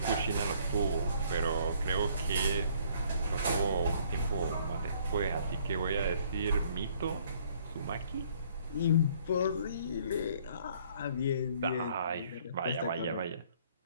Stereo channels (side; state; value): both; inverted; correlation -0.61